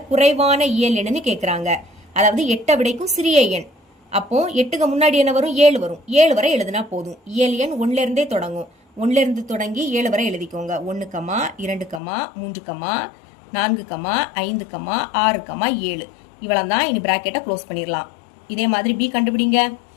குறைவான இயல் எண்ணுன்னு கேக்குறாங்க. அதாவது 8ஐ விடைக்கும் சிறிய எண். அப்போ 8க்கு முன்னாடி என்ன வரும்? 7 வரும். 7 வரை எழுதுனா போதும். இயல் எண் 1ல இருந்தே தொடங்கும். 1ல இருந்து தொடங்கி 7 வரை எழுதிக்கோங்க. 1, 2, 3, 4, 5, 6, 7 இவ்வளவு தான். இனி பிராக்கெட்டை க்ளோஸ் பண்ணிடலாம். இதே மாதிரி பி கண்டுபிடிங்க.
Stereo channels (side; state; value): right; drops out; at 12.0 s